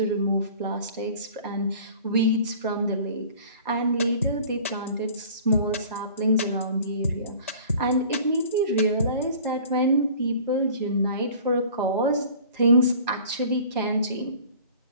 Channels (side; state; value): both; inverted; correlation -0.46